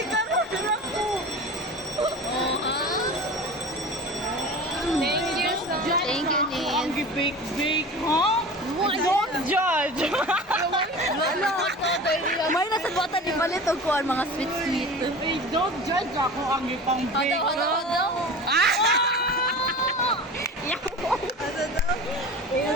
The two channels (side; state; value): both; normal; correlation 0.35